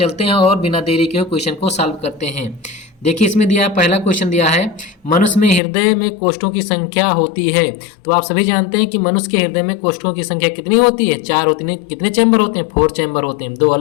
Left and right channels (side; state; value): right; drops out; at 5.6 s